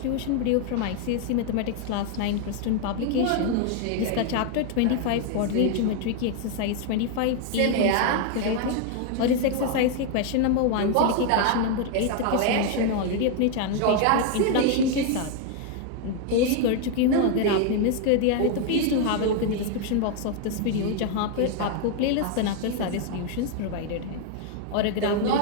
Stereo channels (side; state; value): both; different; correlation 0.00